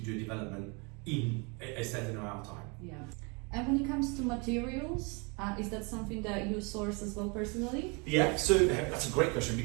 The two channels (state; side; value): quieter; left; 31.3 dB